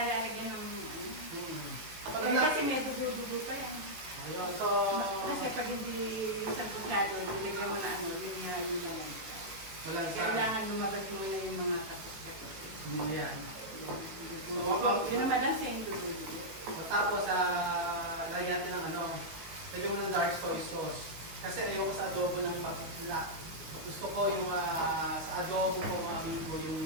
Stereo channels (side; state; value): left; late; 18 ms